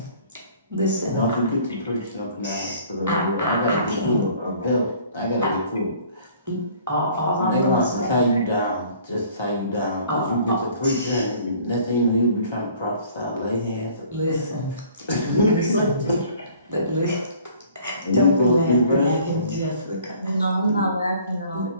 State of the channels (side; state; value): both; inverted; correlation -0.53